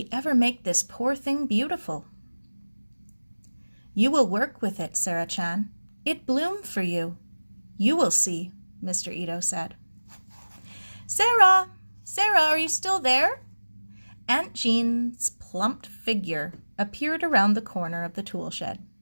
ever make this poor thing beautiful? You will work with it, Sara-chan. It bloomed for you. You will see, Mr. Ito said. Sara! Sara, are you still there? Aunt Jean's plump figure appeared around the corner of the tool shed.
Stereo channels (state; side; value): inverted; both; correlation -1.00